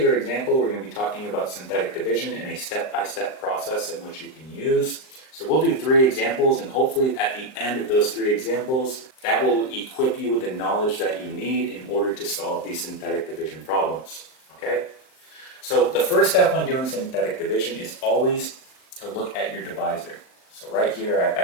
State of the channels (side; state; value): right; late; 39 ms